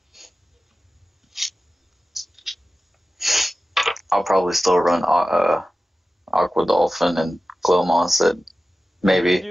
I'll probably still run Aqua Dolphin and Glow Moss at maybe.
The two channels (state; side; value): normal; both; correlation 0.95